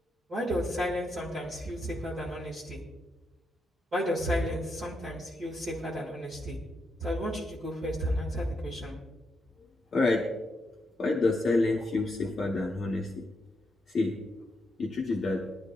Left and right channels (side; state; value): both; normal; correlation 0.82